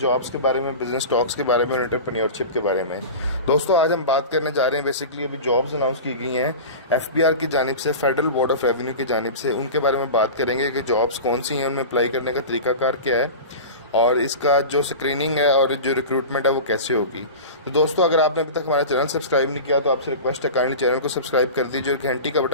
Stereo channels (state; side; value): inverted; both; correlation -0.31